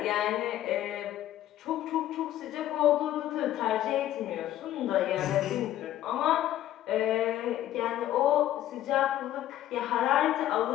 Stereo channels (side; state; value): right; quieter; 13.1 dB